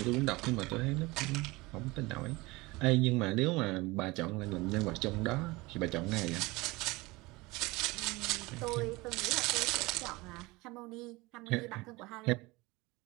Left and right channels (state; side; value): quieter; left; 22.6 dB